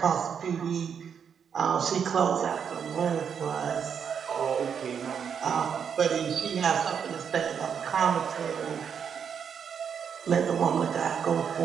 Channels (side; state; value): left; quieter; 7.3 dB